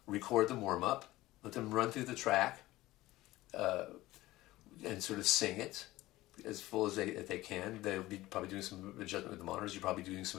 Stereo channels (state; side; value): quieter; right; 17.6 dB